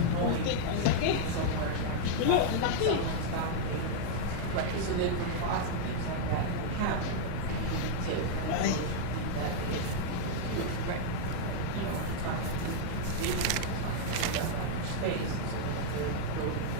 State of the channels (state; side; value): different; both; correlation -0.01